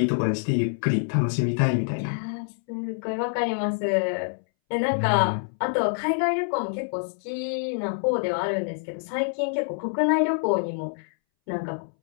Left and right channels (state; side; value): silent; right; 61 dB below the other